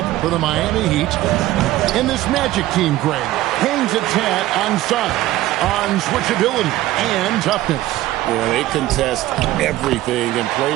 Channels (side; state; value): left; quieter; 15.6 dB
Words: for the Miami Heat. In this Magic team, Greg, hangs its hat on size, on switchability, and toughness. Yeah, they contest everything and play